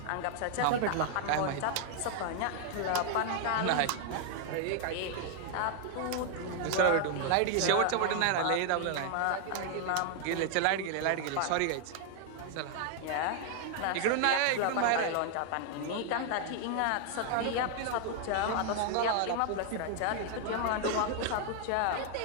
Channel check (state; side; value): different; both; correlation 0.00